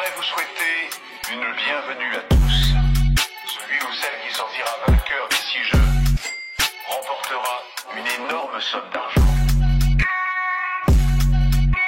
vous souhaiter une bienvenue à tous. Celui ou celle qui sortira vainqueur d'ici jeu remportera une énorme somme d'argent.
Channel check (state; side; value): identical; both; correlation 1.00